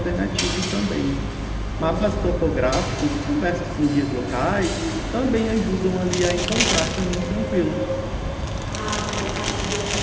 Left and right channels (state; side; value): identical; both; correlation 1.00